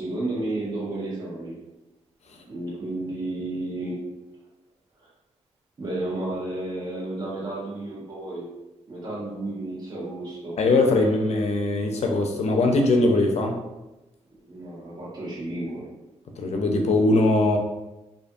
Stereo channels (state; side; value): normal; both; correlation 0.67